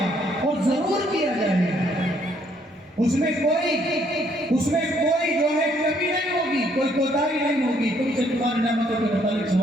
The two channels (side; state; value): both; normal; correlation 0.68